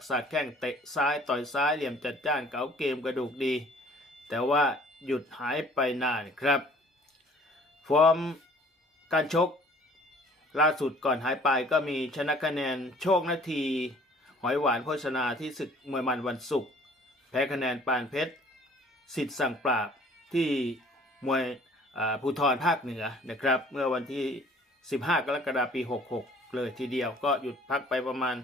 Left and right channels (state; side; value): normal; both; correlation 0.54